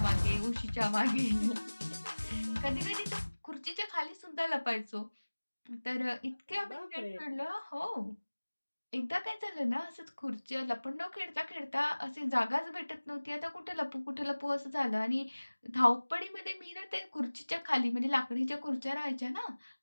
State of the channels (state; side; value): inverted; both; correlation -1.00